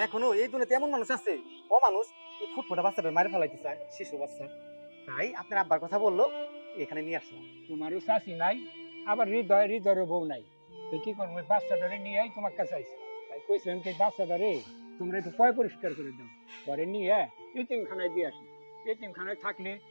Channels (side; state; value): both; inverted; correlation -1.00